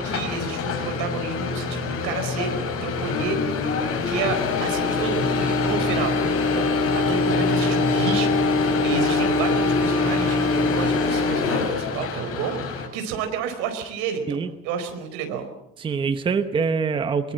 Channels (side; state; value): both; normal; correlation 0.35